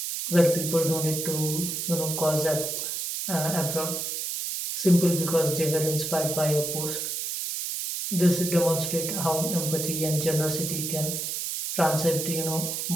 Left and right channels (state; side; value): noise; right; hiss, 3 dB below the sound